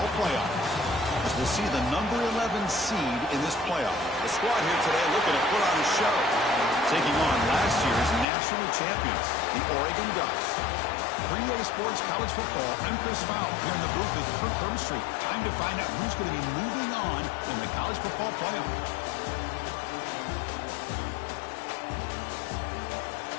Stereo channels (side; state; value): right; drops out; at 8.2 s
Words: playoff. As we'll see the number 11 seed in this playoff. The squad here today looking to put on a show. Taking on last year's national champions, the Oregon Ducks. 3A Sports College Football, I'm Chris Fowle, here in the booth with Kirk Hermstreet. Time to find out who's going to be moving on in the college football playoff.